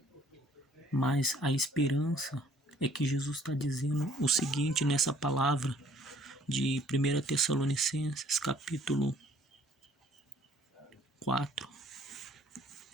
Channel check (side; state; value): both; normal; correlation 0.59